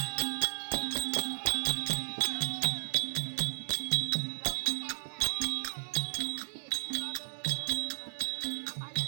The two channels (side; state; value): left; silent; 55 dB below the other